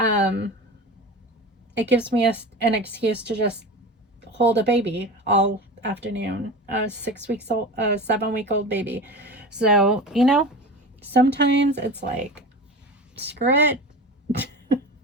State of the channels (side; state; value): both; normal; correlation 0.31